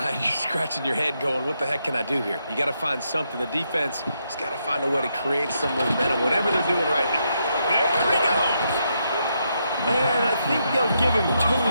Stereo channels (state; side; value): inverted; both; correlation -0.80